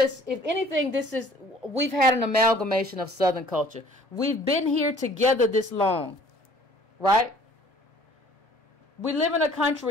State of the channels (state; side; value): normal; both; correlation 0.53